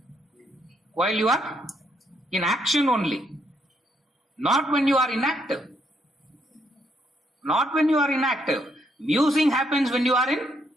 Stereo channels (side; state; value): both; normal; correlation 0.74